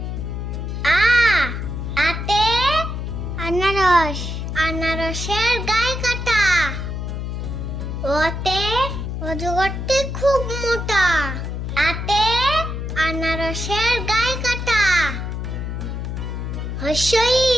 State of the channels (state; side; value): noise; left; hum, 4 dB below the sound